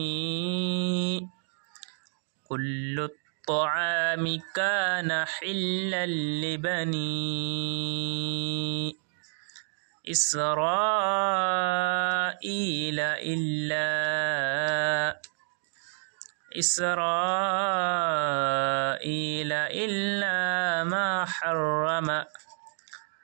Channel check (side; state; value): left; silent; 59 dB below the other